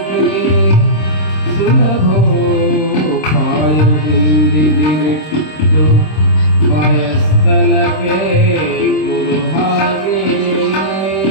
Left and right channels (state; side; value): late; right; 26 ms